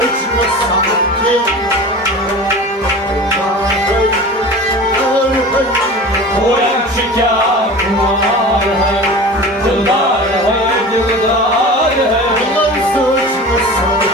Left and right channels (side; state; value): both; normal; correlation 0.36